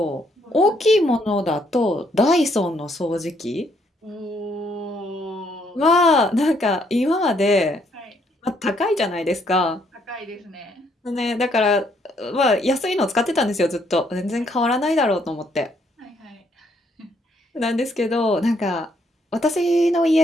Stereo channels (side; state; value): both; normal; correlation 0.70